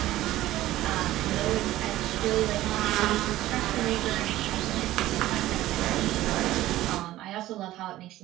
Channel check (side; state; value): left; quieter; 15.4 dB